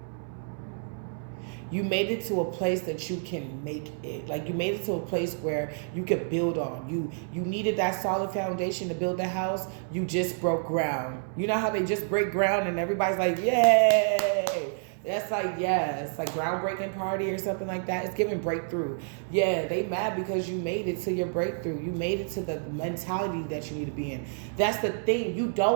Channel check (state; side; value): silent; left; 59 dB below the other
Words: You made it to a place that you can make it. Like, you made it to a place where you could build on. You needed that solid foundation to build the house. You just broke ground. You know how they just break ground and everybody's like, yay! That's like, yeah, it's like groundbreaking party or something like that. It's giving breakthrough. Yeah, they mad because you made it to your breakthrough. You made it to the mentality that you need to be in. That's the thing. You